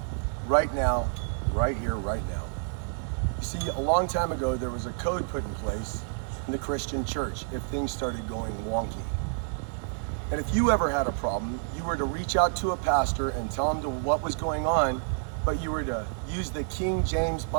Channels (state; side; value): silent; left; digital silence